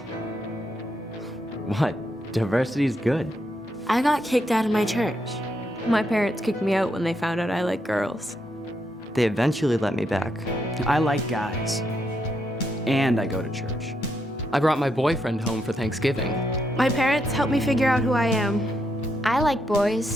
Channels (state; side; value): normal; both; correlation 0.79